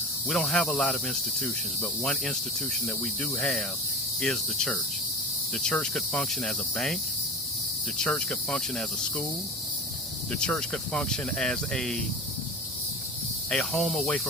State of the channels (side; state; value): both; normal; correlation 0.31